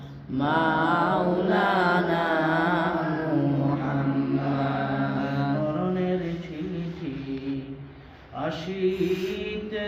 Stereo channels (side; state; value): both; identical; correlation 1.00